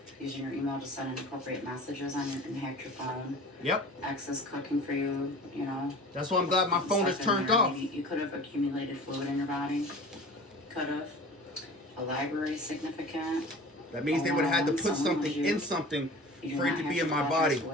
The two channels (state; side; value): normal; both; correlation 0.39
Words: Using your email to send inappropriate messages on and hack your phone. Yep. Excess cooking for you, you know. That's why I'm glad my phone is turned off. Maybe you could have accumulated fluid in your body. Could have. A library significant. That means they would have had to put something in something for it to be in my body.